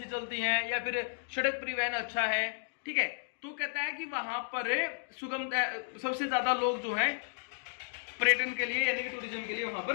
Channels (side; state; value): right; silent; digital silence